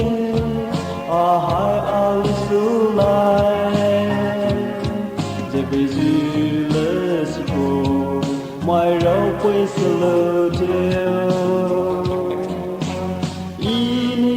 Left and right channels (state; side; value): identical; both; correlation 1.00